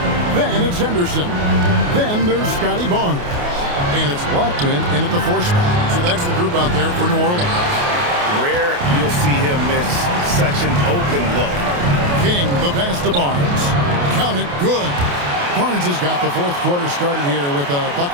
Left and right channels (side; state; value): left; late; 28 ms